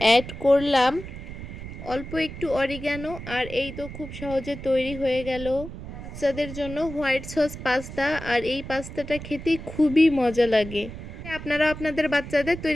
অ্যাড করলাম অল্প একটু অরিগ্যানো। আর এই তো খুব সহজে তৈরি হয়ে গেল বাচ্চাদের জন্য হোয়াইট সস পাস্তা। আর এই পাস্তাটা খেতে খুবই মজা লাগে, আপনারা আপনাদের বাচ্চাদের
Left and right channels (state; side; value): noise; right; rumble, 11 dB below the sound